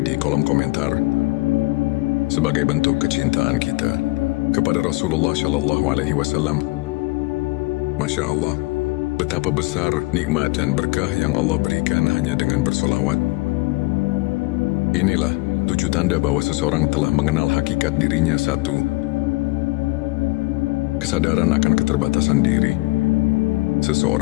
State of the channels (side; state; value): right; quieter; 22.8 dB